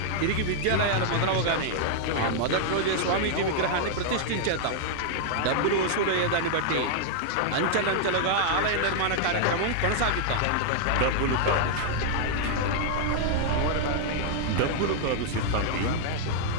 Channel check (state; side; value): different; both; correlation -0.01